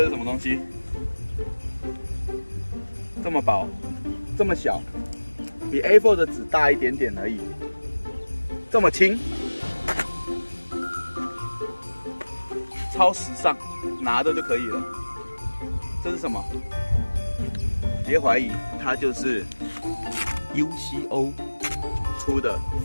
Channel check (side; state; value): both; inverted; correlation -1.00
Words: 是什么东西？这么薄，这么小，比 A4 的纸大一点点而已。这么轻，超时尚，拿着就可以了。这是什么？别怀疑，它就是 UCO 出的